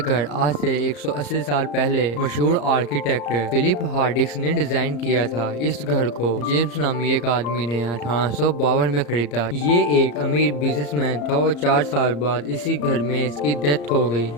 आज से 180 साल पहले मशहूर आर्किटेक्ट फिलिप हार्डिक्स ने डिजाइन किया था। इस घर को जेम्स नामी एक आदमी ने 1852 में खरीदा। ये एक अमीर बिजनेसमैन था और 4 साल बाद इसी घर में इसकी डेथ हो गई।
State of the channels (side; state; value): right; late; 34 ms